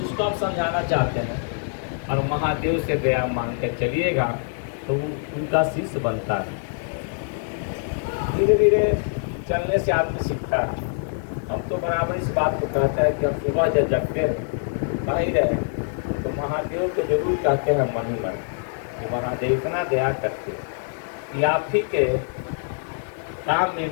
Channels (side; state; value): right; silent; digital silence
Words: आप समझाना चाहते हैं और महादेव से दया मांग के चलिएगा तो उनका शिष्य बनता है। धीरे धीरे चलने से आदमी सीखता है। हम तो बराबर इस बात को कहते हैं कि हम सुबह जब जगते हैं कहीं रहे तो महादेव को जरूर कहते हैं मन ही मन कि महादेव इतना दया करते कि आप ही के काम